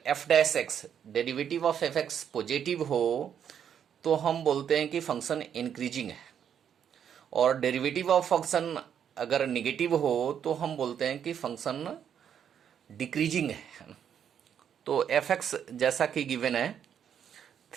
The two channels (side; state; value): left; quieter; 8.6 dB